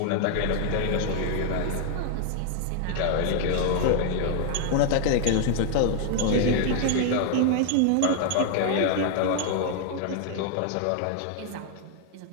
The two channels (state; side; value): different; both; correlation 0.00